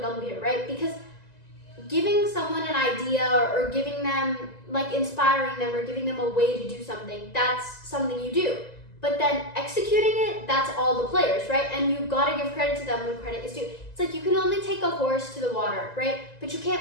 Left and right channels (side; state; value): right; late; 1.9 ms